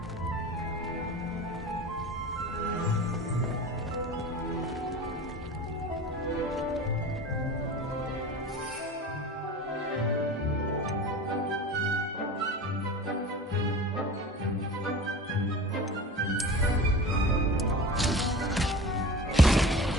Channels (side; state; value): both; normal; correlation 0.36